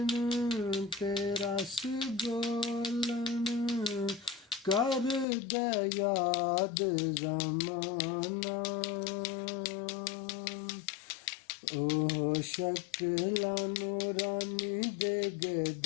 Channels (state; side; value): drops out; right; at 5.2 s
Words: ते रस बोलन कर दे याद जमाना। ओ शक्ल नूरानी दे